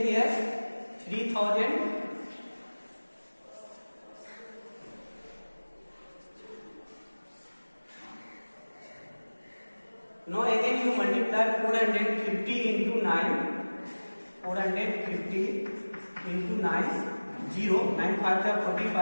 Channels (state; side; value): inverted; both; correlation -1.00